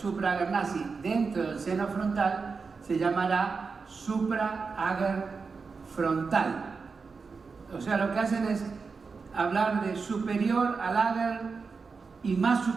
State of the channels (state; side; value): quieter; left; 4.8 dB